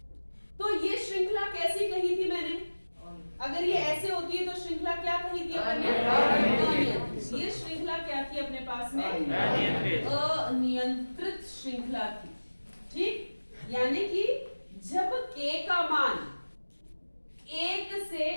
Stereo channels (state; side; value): inverted; both; correlation -1.00